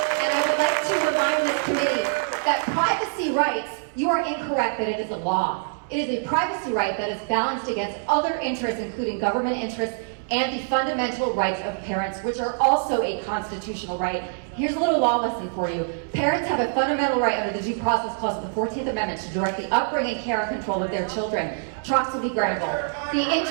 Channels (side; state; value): left; silent; 62 dB below the other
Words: And I would like to remind this committee that privacy rights, you are incorrect that it is a law. It is a privacy right that is balanced against other interests, including government interests and the fundamental rights of parents, which are also a constitutional right. Here's a little law lesson for you. Parents have a fundamental right under the Due Process Clause of the 14th Amendment to direct the upbringing, care, and control of their children. Troxel v. Granville. The